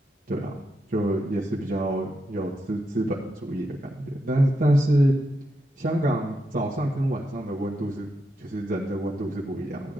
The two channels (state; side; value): normal; both; correlation 0.84